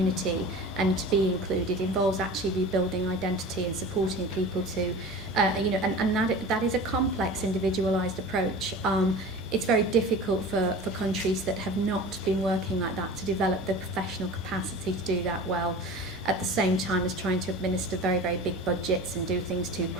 and to be included involves actually rebuilding identity and supporting people to, and that is a complex, individualised approach. It's very difficult for countries that have not been working like that to develop the professional capacity to do that well, at the same time as trying to administer very, very big budgets and do things too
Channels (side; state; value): both; normal; correlation 0.36